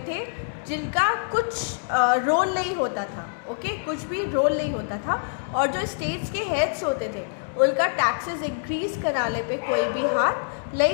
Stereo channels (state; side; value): silent; right; digital silence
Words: थे जिनका कुछ रोल नहीं होता था. ओके, कुछ भी रोल नहीं होता था. और जो स्टेट्स के हेड्स होते थे उनका टैक्सेस इंक्रीज कराने पे कोई भी हाथ